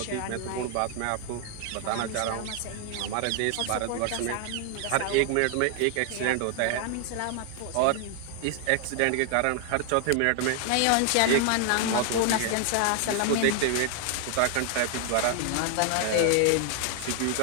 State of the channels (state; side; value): different; both; correlation 0.00